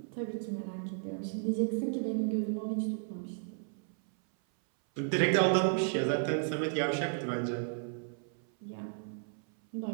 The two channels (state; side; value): silent; left; 55 dB below the other